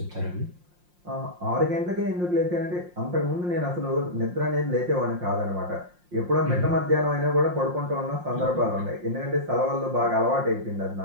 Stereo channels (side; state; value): left; late; 5.6 ms